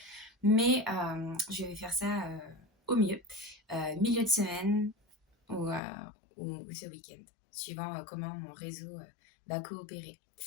mais je vais faire ça au mieux. Milieu de semaine, ou, ou ce week-end, suivant comment mon réseau va coopérer.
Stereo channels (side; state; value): right; drops out; at 5.8 s